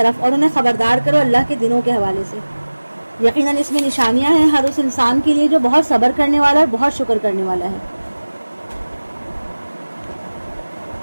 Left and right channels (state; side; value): inverted; both; correlation -1.00